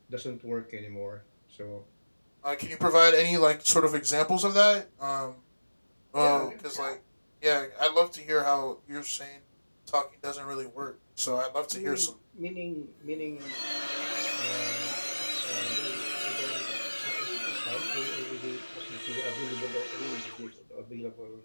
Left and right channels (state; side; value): inverted; both; correlation -1.00